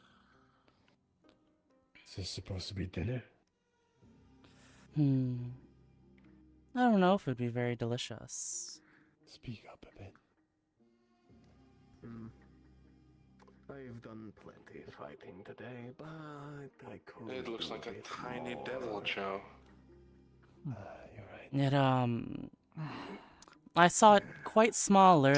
Is this supposed to be dinner? I don't know if it'd be very delicious. Speak up a bit. I've done plenty of fighting today, but I could. It looks like a tiny devil, Joe. You're right. I saw it quite small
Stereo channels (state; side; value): identical; both; correlation 1.00